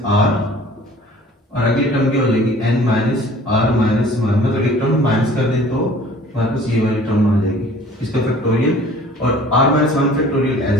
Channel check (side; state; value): both; normal; correlation 0.50